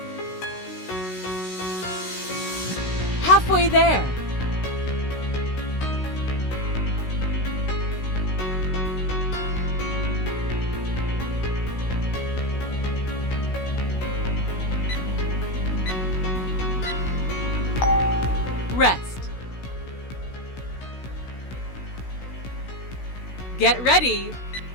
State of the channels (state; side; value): late; right; 16 ms